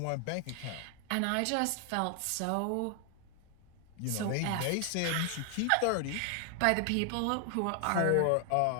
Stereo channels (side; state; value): both; different; correlation 0.00